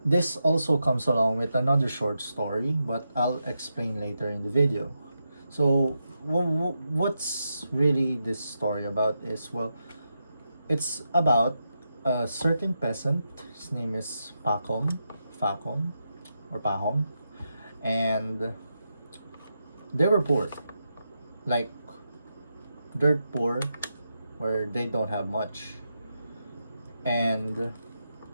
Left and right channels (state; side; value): inverted; both; correlation -0.86